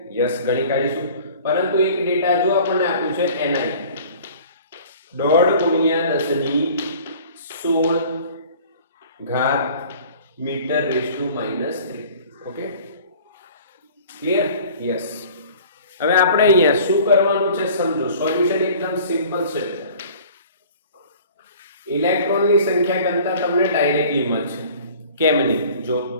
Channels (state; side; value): inverted; both; correlation -0.47